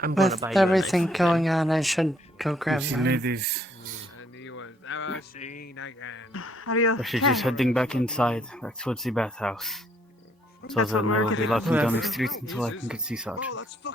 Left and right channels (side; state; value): both; normal; correlation 0.67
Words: I'm gonna With buy you a everything knife. going on, I should go grab Oopsie, mine. ladies. And he was never seen again. Are you I should okay? just heading back inside, back towards the bathhouse. So That's what then I we're will be doing. locking down the Whoever- streets until I can get Seaside. Oh, that's